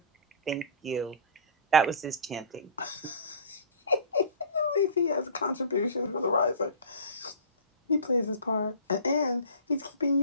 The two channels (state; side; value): inverted; both; correlation -0.37